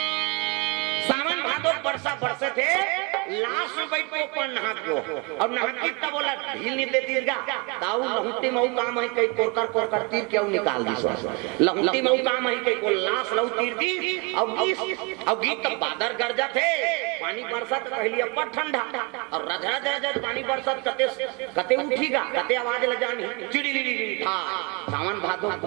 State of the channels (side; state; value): left; quieter; 30.5 dB